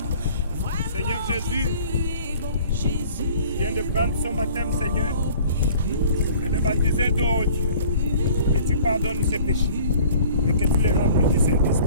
Seigneur Jésus vient de prendre son baptême, Seigneur, de le baptiser d'eau, Dieu. Que tu pardonnes ses péchés et que tu les remplis du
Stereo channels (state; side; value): inverted; both; correlation -0.49